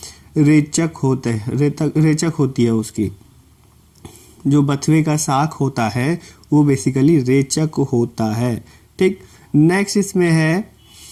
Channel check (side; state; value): both; identical; correlation 1.00